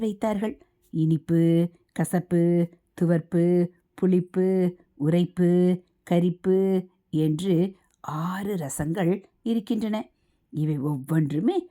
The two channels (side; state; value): both; identical; correlation 1.00